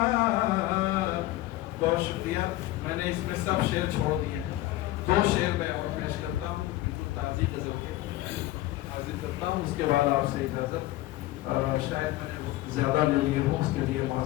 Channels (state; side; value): quieter; right; 16.9 dB